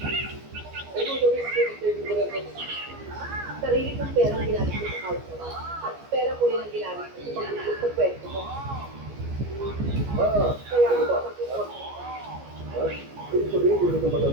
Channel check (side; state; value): left; late; 15 ms